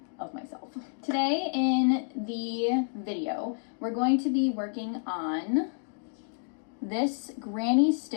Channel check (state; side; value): silent; right; digital silence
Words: of myself. Today in the video, we're going to be working on this granny